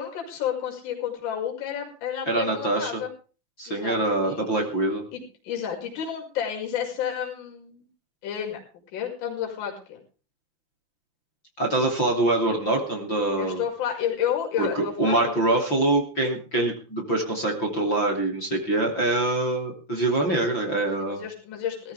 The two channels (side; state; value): right; late; 5.9 ms